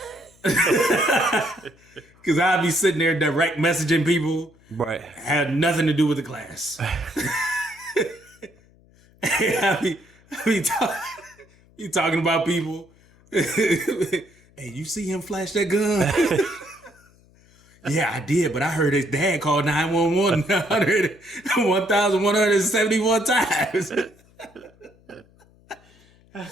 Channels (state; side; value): noise; left; hum, 29 dB below the sound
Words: because I'd be sitting there direct messaging people. Right. Had nothing to do with the class. I be talking about people. Hey, you see him flash that gun? Yeah, I did, but I heard his dad call 911 1,171 times.